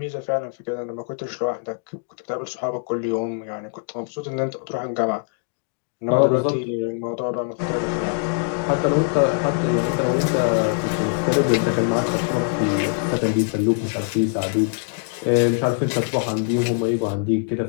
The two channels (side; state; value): right; silent; digital silence